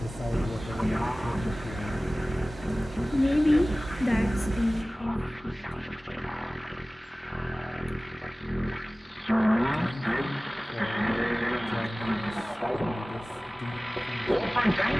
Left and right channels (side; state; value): both; normal; correlation 0.98